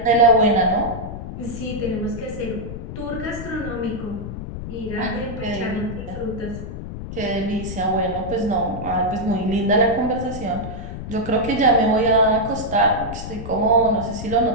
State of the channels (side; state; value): left; noise; rumble, 8 dB below the sound